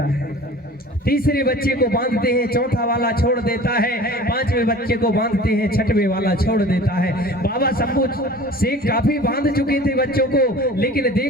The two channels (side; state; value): both; normal; correlation 0.43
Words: है, तीसरे बच्चे को बांधते हैं, चौथा वाला छोड़ देता है, पांचवें बच्चे को बांधते हैं, छठवें वाला छोड़ देता है। बाबा शंभू शेख काफी बांध चुके थे बच्चों को, लेकिन